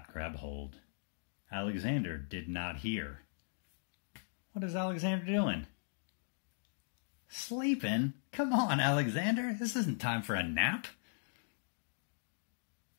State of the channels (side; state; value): right; silent; digital silence